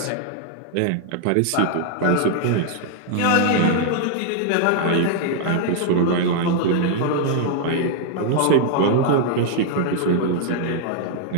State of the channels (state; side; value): different; both; correlation 0.00